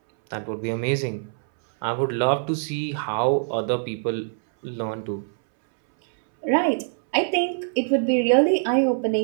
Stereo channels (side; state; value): left; silent; 63 dB below the other